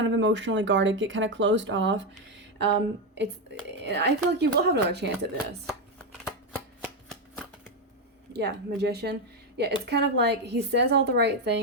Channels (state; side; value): normal; both; correlation 0.07